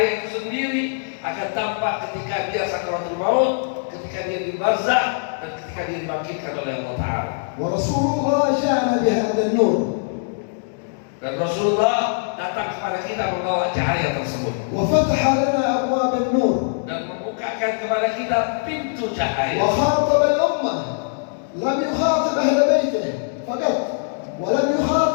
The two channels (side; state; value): right; silent; digital silence